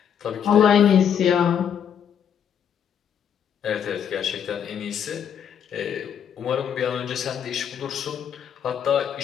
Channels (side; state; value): right; quieter; 8.4 dB